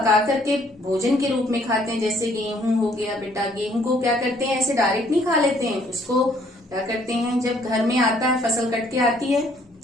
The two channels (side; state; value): both; normal; correlation 0.63